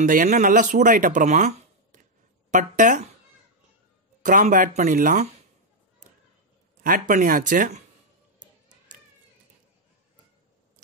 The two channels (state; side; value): normal; both; correlation 0.00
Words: எண்ணெய் நல்லா சூடாயிட்ட அப்புறமா பட்டை கிராம்பு ஆட் பண்ணிடலாம். ஆட் பண்ணியாச்சு.